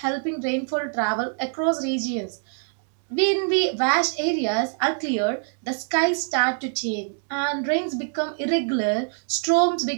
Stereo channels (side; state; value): left; silent; digital silence